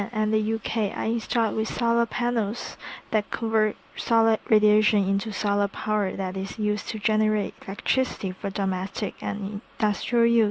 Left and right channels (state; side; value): identical; both; correlation 1.00